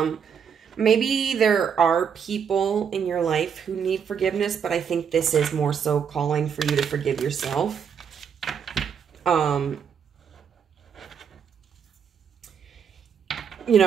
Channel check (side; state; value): left; quieter; 7.2 dB